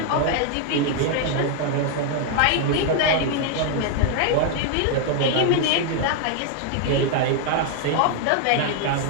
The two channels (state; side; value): different; both; correlation 0.00